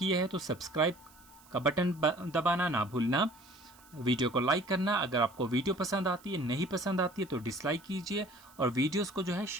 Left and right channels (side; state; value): right; noise; hiss, 26 dB below the sound